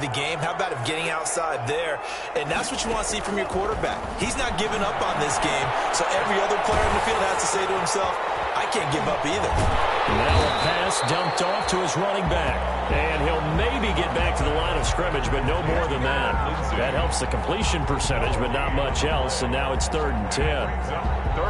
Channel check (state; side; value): identical; both; correlation 1.00